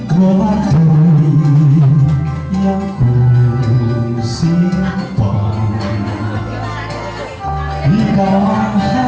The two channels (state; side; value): identical; both; correlation 1.00